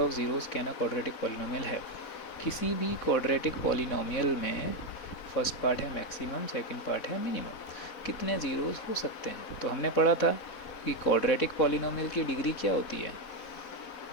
zeros can a quadratic polynomial है। किसी भी क्वाड्रेटिक पॉलिनोमियल में फर्स्ट पार्ट है मैक्सिमम, सेकंड पार्ट है मिनिमम, कितने ज़ीरोज़ हो सकते हैं। तो हमने पढ़ा था कि क्वाड्रेटिक पॉलिनोमियल की डिग्री क्या होती है,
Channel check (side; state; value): right; late; 4.1 ms